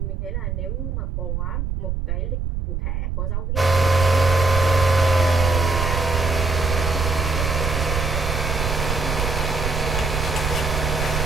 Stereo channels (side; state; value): right; noise; rumble, 2 dB below the sound